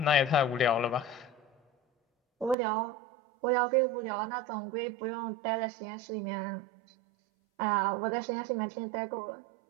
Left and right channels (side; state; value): left; drops out; at 2.6 s